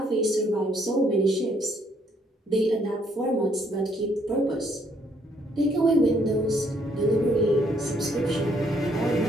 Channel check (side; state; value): both; normal; correlation 0.68